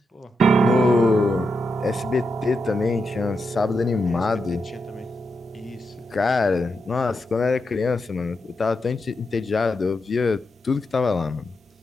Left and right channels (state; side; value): normal; both; correlation 0.85